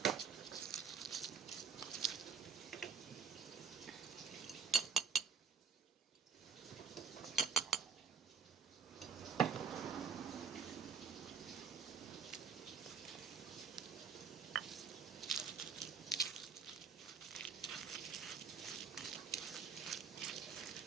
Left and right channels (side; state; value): left; quieter; 6.4 dB